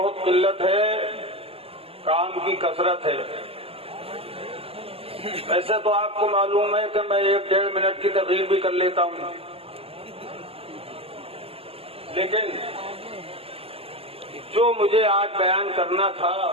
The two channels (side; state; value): left; late; 0.28 ms